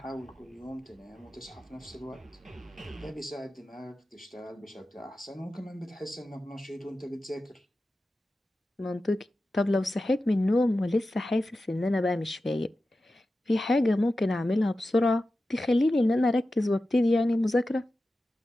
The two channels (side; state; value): both; normal; correlation 0.93